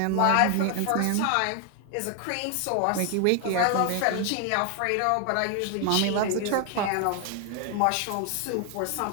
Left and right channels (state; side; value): different; both; correlation 0.00